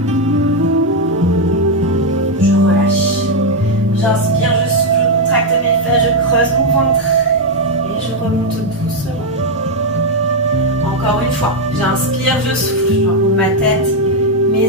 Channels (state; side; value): normal; both; correlation 0.01